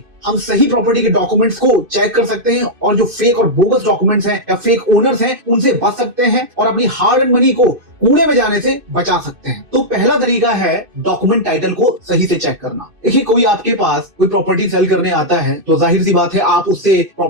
हम सही प्रॉपर्टी के डॉक्यूमेंट्स को चेक कर सकते हैं और जो फेक और बोगस डॉक्यूमेंट्स हैं या फेक ओनर्स हैं उनसे बच सकते हैं और अपनी हार्ड एंड मनी को कूड़े में जाने से बचा सकते हैं। तो पहला तरीका है डॉक्यूमेंट टाइटल को सही से चेक करना। देखिए, कोई आपके पास कोई प्रॉपर्टी सेल करने आता है तो जाहिर सी बात है आप उससे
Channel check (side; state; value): left; late; 2.6 ms